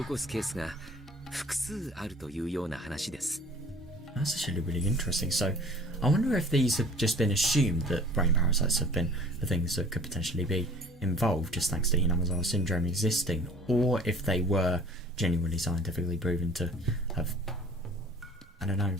すケースが複数あるというような話です。 That's actually really interesting. So, I wonder if these have just been assumed that brain parasites have been the things that could potentially be involved just thanks to Hinamizawa syndrome existing, or if they were genuinely scientifically proven to have, I don't know,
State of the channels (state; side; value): normal; both; correlation 0.48